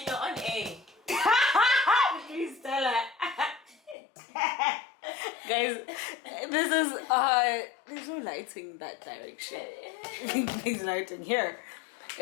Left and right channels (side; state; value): right; drops out; at 4.0 s